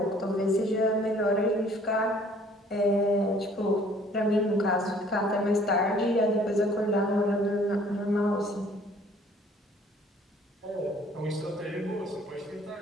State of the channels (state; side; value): normal; both; correlation 0.56